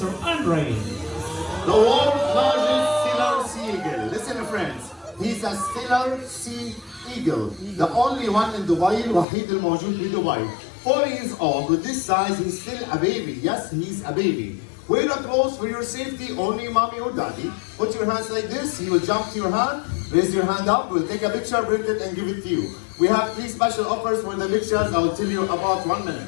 Andrei. The world's largest Steller sea eagle. Listen, friends. He's a Steller sea eagle. The only one in Dubai. الوحيد الموجود في Dubai. 4 years old. With this size, he's still a baby. Yes, he's a baby. Wear the clothes for your safety, only mommy or daddy. Put your hands like this. He will jump to your hand. Raise your hand up. We'll take a picture, print it, and give it to you. We have 3 special offers for the pictures. I will tell you about 1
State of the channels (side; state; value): right; drops out; at 9.2 s